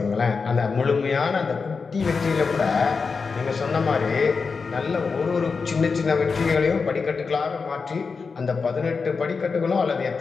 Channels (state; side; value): quieter; right; 4.9 dB